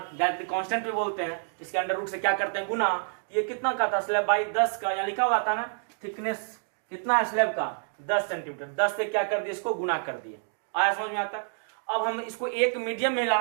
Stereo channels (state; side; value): silent; left; digital silence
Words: कांस्टेंट भी बोलते हैं, इसके अंडर रूट से क्या करते हैं गुना, ये कितना का था स्लैब बाई 10 का, यहाँ लिखा हुआ था ना थिकनेस कितना है स्लैब का 10 सेंटीमीटर, 10 से क्या कर दिए इसको गुना कर दिए, आया समझ में आता। अब हम इसको एक मीडियम में